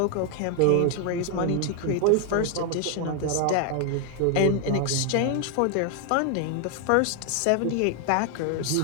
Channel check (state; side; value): different; both; correlation 0.00